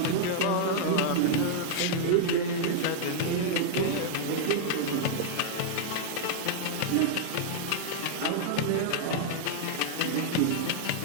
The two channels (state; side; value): different; both; correlation -0.01